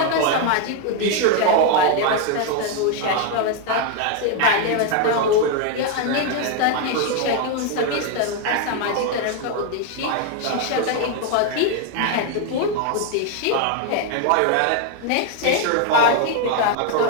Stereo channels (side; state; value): both; different; correlation 0.01